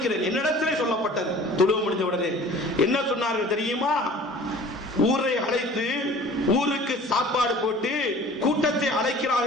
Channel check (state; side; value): normal; both; correlation 0.46